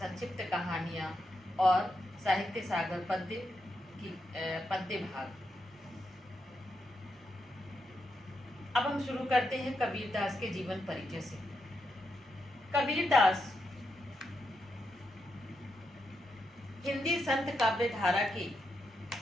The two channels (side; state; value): both; normal; correlation 0.84